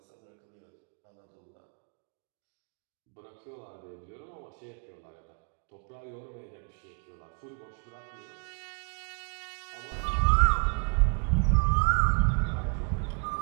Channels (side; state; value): left; quieter; 34.6 dB